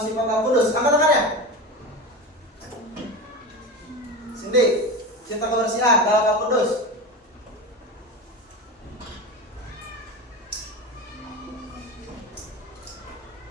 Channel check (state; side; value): normal; both; correlation 0.25